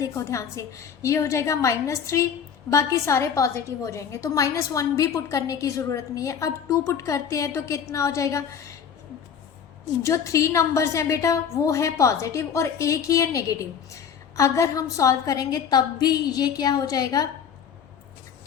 ध्यान से, ये हो जाएगा -3, बाकी सारे पॉजिटिव हो जाएंगे, तो -1 भी पुट करने की ज़रूरत नहीं है। अब 2 पुट करते हैं तो कितना हो जाएगा, जो 3 नंबर्स हैं बेटा वो है पॉजिटिव और एक ही है नेगेटिव। अगर हम सॉल्व करेंगे तब भी ये क्या हो जाएगा,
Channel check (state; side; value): quieter; right; 7.5 dB